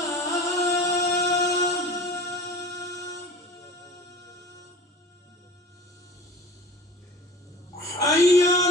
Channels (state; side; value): normal; both; correlation 0.40